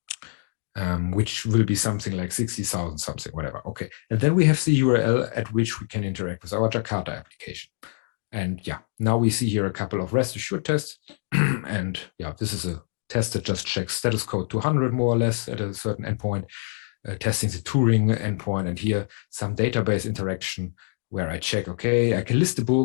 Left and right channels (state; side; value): silent; right; digital silence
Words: which will be something like 60,000 something, whatever. Okay. And then we have the URL at which we can interact with our Jakarta application. And yeah, now we see here a couple of rest assured tests. And yeah, this is a test that just checks status code 200 more or less at a certain endpoint. Testing the Turing endpoint, and here some database interaction where I check, okay, I can list the